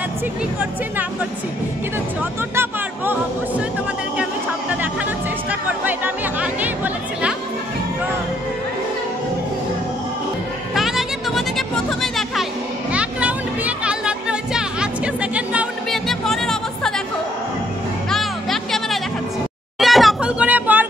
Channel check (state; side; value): normal; both; correlation 0.69